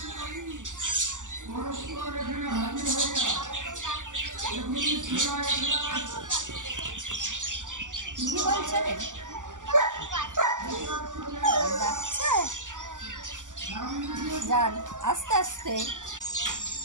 কি বলছেন? যাচ্ছে, যান আস্তে আস্তে।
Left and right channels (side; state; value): left; late; 0.87 ms